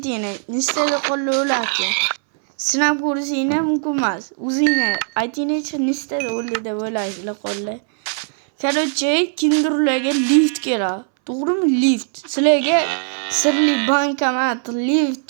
Nechtada qo'lni o'larkan? Sinab ko'rishingni mumkin emas. O'zingni aytingchi nechtada o'li deb o'ylaysizlar qo'llar. Короче, kinderlarga lift kerak. To'g'rimi? Lift. Sizlarga sirli bankomat, lift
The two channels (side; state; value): left; silent; 66 dB below the other